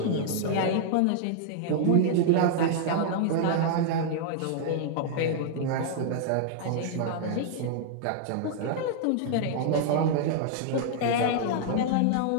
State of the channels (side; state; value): both; different; correlation -0.01